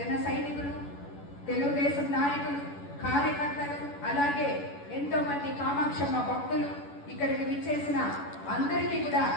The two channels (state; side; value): late; right; 11 ms